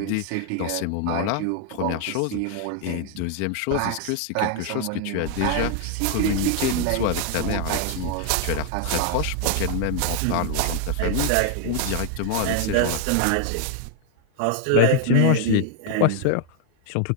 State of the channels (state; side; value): different; both; correlation 0.00